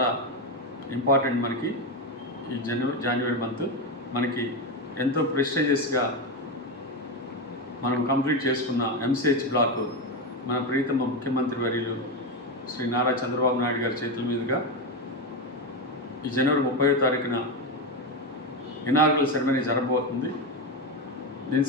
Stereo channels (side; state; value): both; normal; correlation 0.12